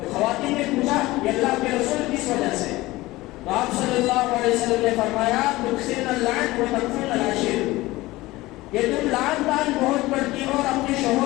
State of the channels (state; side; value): quieter; right; 19.1 dB